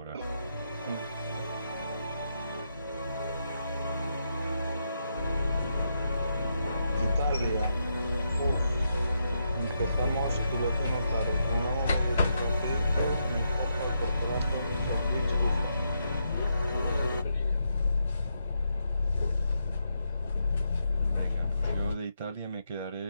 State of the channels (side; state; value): both; inverted; correlation -0.81